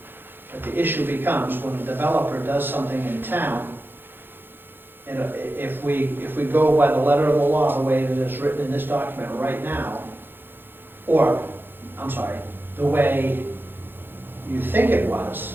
But the issue becomes when a developer does something in town, and if we go by the letter of the law, the way that it's written in this document right now, or, I'm sorry, the way you think it was,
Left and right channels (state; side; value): late; left; 0.10 ms